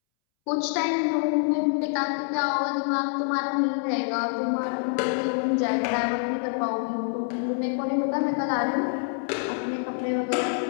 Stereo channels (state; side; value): silent; right; 61 dB below the other